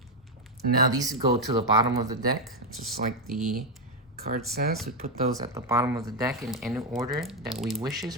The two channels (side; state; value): both; normal; correlation 0.04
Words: Now these go to the bottom of the deck, just like the card says. We put those at the bottom of the deck in any order that we wishes